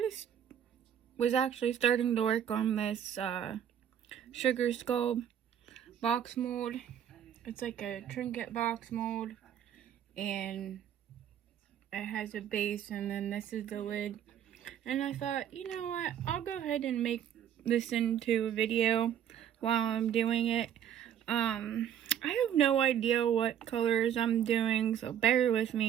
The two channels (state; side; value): quieter; left; 9.7 dB